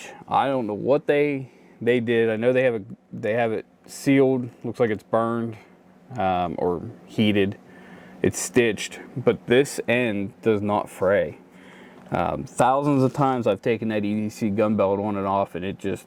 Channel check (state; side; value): identical; both; correlation 1.00